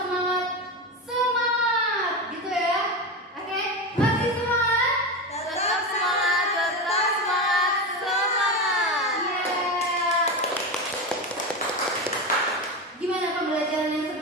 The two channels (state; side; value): normal; both; correlation 0.19